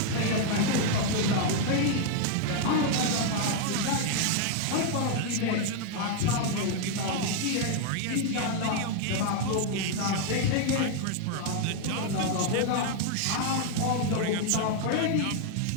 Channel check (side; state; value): both; different; correlation 0.00